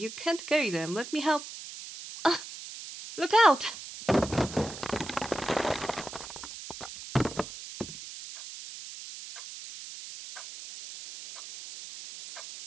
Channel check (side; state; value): right; noise; hiss, 12 dB below the sound